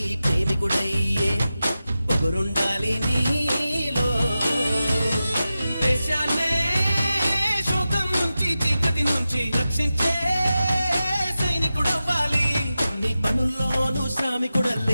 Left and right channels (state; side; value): inverted; both; correlation -0.93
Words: ప్రేమికుడయ్యే పొగరుండాలి నీలో. దేశాన్నే శోకం నుంచి చీకటి నుంచి రక్షించే సైనికుడవ్వాలి. అన్ని పనుల్లోనూ